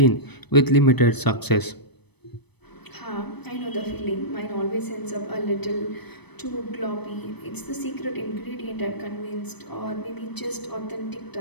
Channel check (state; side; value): late; right; 0.99 ms